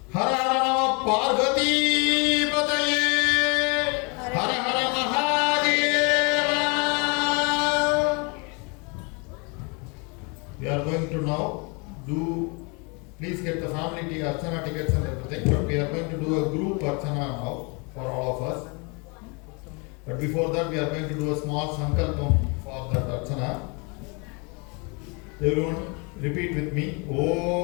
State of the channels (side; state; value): right; quieter; 32.1 dB